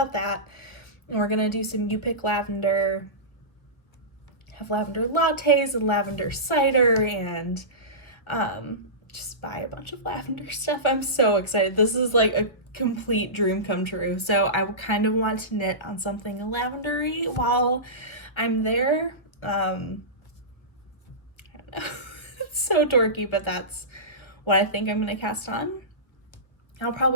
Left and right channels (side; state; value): right; late; 1.1 ms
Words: that. And we're going to do some You Pick Lavender, have lavender lattes and lavender cider, and just buy a bunch of lavender stuff. I'm so excited. This is like a complete dream come true. So I kind of want to knit on something lavendery while I'm there. I don't know. It's so dorky, but that's what I think I'm going to cast on. I'll